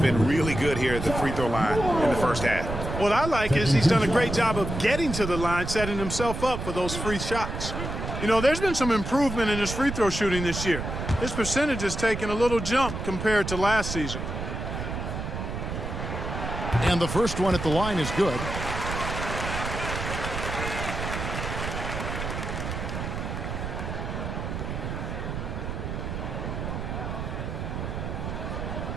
really good here at the free throw line in the first half. What I like is he's done a great job of getting to the line, setting himself up for those free shots. You know, there's been some improvement in his free throw shooting this year. His percentage has taken a little jump compared to last season. And the first one at the line is good.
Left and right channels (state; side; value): noise; right; rumble, 5 dB below the sound